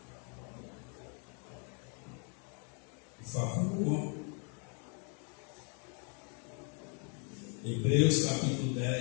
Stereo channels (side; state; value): right; quieter; 39.1 dB